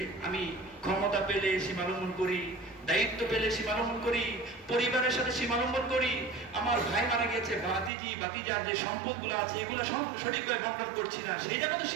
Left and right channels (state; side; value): drops out; left; at 7.9 s